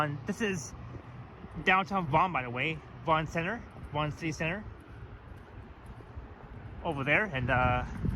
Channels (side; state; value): both; identical; correlation 1.00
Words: This is downtown Vaughan, by the way. Vaughan Center, Vaughan City Center. over there,